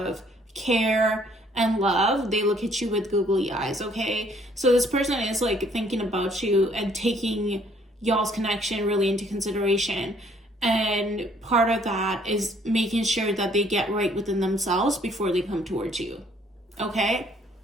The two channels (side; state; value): both; normal; correlation 0.62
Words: care and love. They look at you with googly eyes, okay? So this person is like thinking about you and taking y'all's connection really into consideration. And part of that is making sure that they get right within themselves before they come towards you, okay?